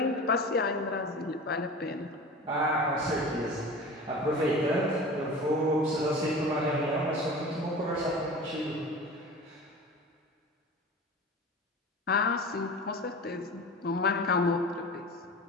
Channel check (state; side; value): normal; both; correlation 0.35